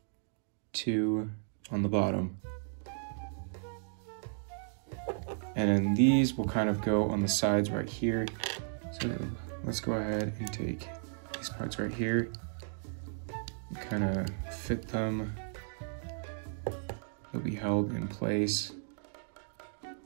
two on the bottom. And then these will kind of go on the sides right here. So let's go ahead and take these parts right here, and kind of fit them. They'll be held in place.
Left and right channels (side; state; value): left; silent; digital silence